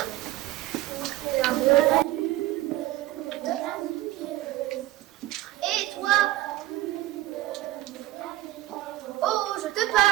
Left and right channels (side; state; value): left; quieter; 16.0 dB